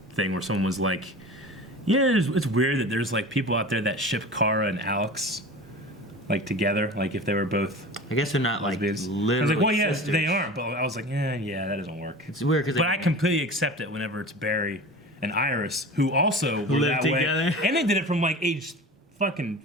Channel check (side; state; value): both; normal; correlation 0.35